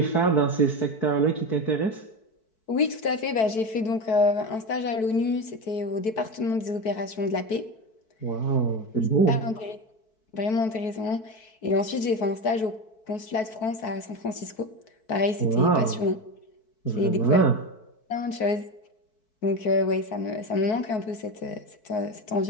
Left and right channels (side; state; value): right; late; 4.6 ms